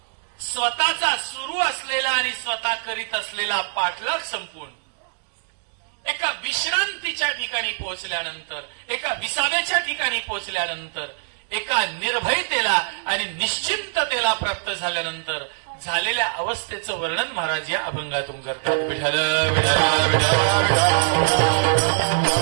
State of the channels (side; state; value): left; silent; digital silence